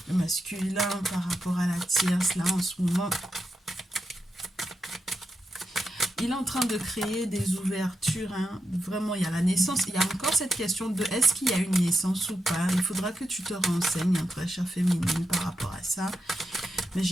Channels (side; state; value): both; normal; correlation 0.86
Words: Le masculin par rapport à la tierce, là en ce moment, il est en train de créer des ouvertures, hein. Vraiment, il y a la naissance, il y a encore cette question de est-ce qu'il y a une naissance ou pas. Il faudra que tu te renseignes, hein, très chère féminine, par rapport à ça. Mais